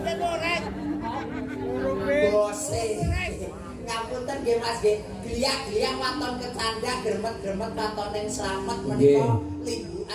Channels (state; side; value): identical; both; correlation 1.00